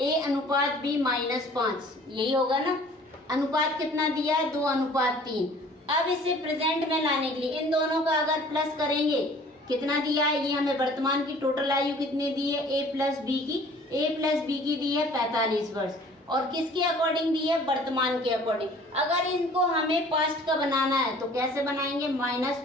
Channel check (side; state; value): both; normal; correlation 0.51